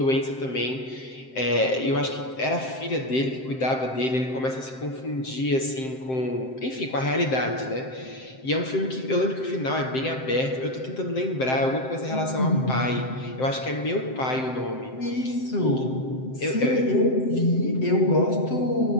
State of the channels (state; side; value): late; right; 7.7 ms